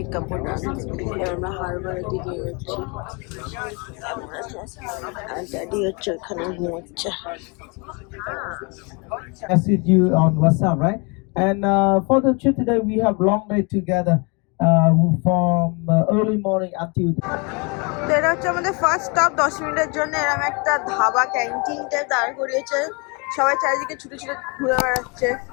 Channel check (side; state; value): right; quieter; 31.6 dB